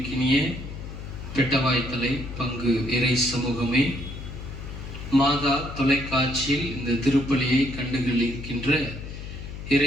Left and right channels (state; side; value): noise; left; hum, 10 dB below the sound